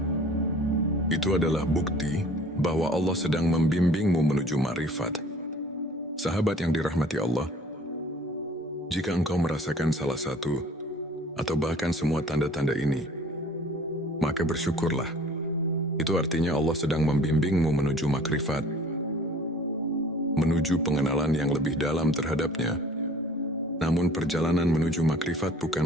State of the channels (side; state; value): both; normal; correlation 0.50